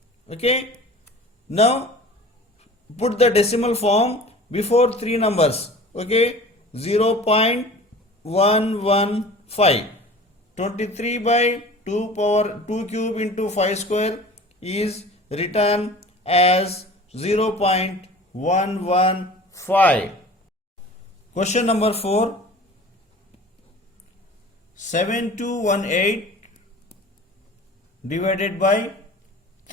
Okay, now put the decimal form before 3 numbers. Okay, 0.115. 23 by 2 power 2 cube into 5 square is written as 0.115. Question number 4. 7218 divided by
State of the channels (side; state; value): both; normal; correlation 0.42